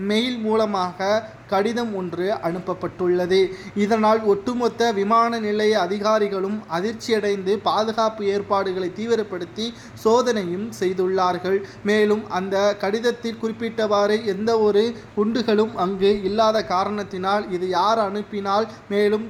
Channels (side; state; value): both; identical; correlation 1.00